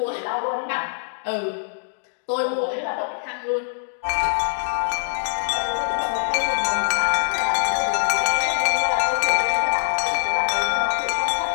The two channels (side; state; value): right; silent; digital silence